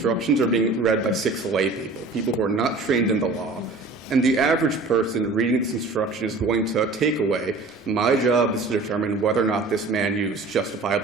are being read by 6 lay people who are not trained in the law, and the average person reading this instruction is going to take away, my job is to determine whether or not this man used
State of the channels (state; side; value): quieter; left; 3.5 dB